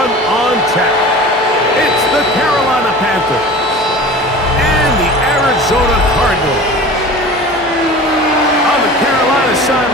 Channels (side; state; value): both; normal; correlation 0.38